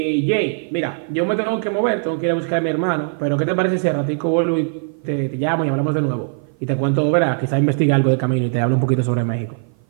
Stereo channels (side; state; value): left; silent; 55 dB below the other